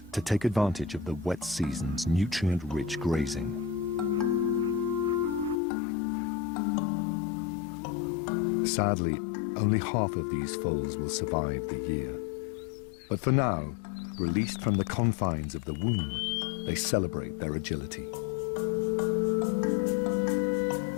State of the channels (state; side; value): drops out; right; at 5.6 s